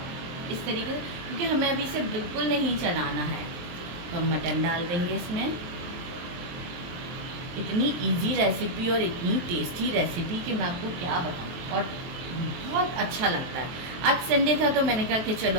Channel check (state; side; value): late; left; 23 ms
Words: इस तरीके से, क्योंकि हमें अभी इसे बिल्कुल नहीं चलाना है। तो हम मटन डाल देंगे इसमें। इतनी इजी रेसिपी और इतनी टेस्टी रेसिपी कि मैं आपको क्या बताऊँ, और बहुत अच्छा लगता है। आज संडे था तो मैंने कहा कि चलो